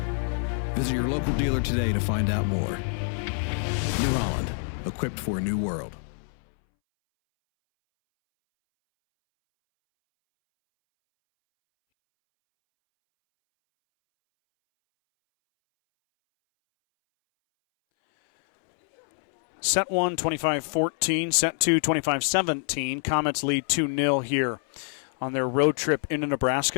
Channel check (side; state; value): right; silent; 61 dB below the other